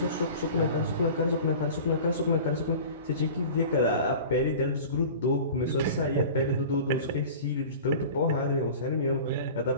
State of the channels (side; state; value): both; inverted; correlation -0.39